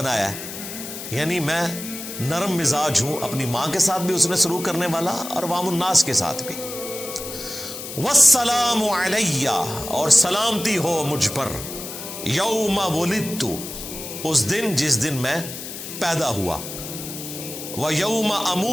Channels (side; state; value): left; noise; hiss, 9 dB below the sound